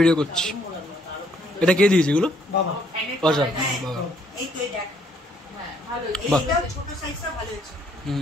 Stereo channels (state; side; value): normal; both; correlation 0.67